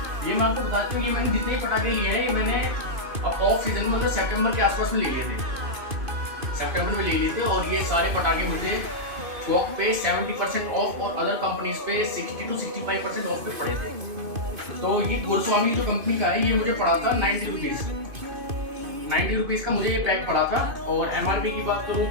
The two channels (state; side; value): late; left; 2.5 ms